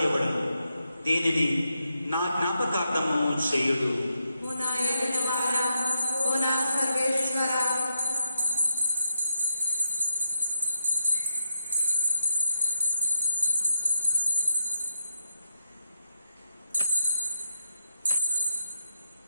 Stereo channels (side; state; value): both; inverted; correlation -0.88